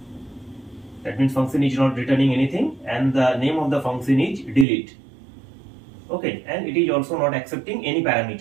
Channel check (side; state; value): left; drops out; at 4.7 s